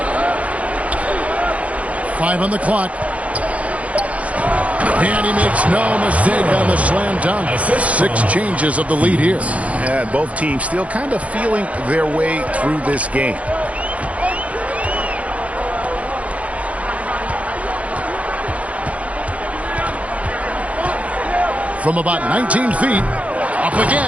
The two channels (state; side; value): late; left; 0.066 ms